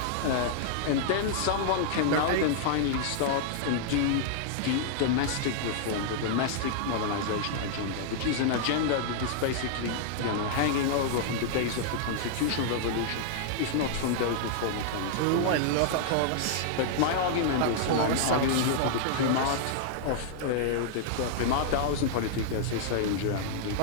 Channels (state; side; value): different; both; correlation -0.01